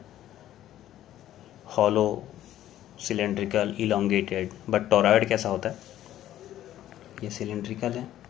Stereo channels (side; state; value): right; quieter; 12.7 dB